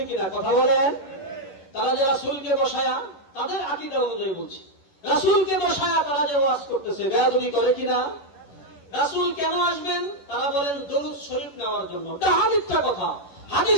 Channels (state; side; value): late; right; 11 ms